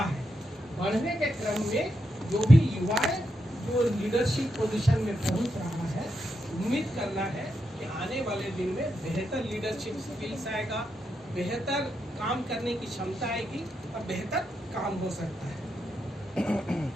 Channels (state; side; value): normal; both; correlation 0.83